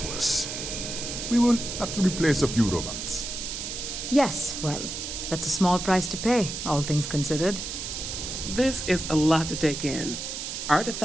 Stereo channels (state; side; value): noise; right; hiss, 6 dB below the sound